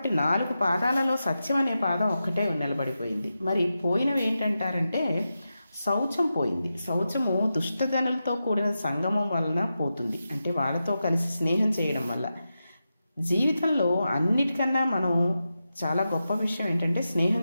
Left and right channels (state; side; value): inverted; both; correlation -0.90